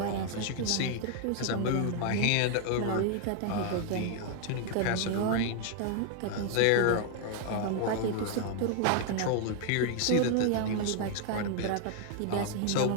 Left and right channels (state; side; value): different; both; correlation 0.00